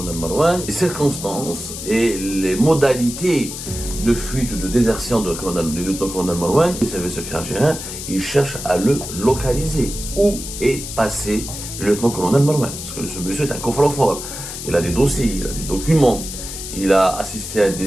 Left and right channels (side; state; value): left; noise; hiss, 8 dB below the sound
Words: Marouane, les circonstances et les modalités de fuite ou de désertion du lieutenant-colonel Marouane. Les services secrets algériens, ils cherchent à le localiser. Où est passé le lieutenant-colonel Marouane? Parce que ce monsieur est un coffre-fort. Il a des dossiers, il a des documents, il a assisté à